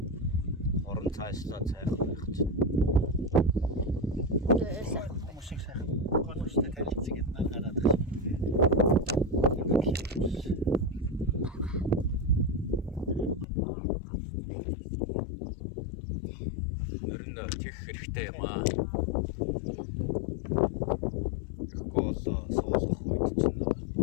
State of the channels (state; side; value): drops out; right; at 13.5 s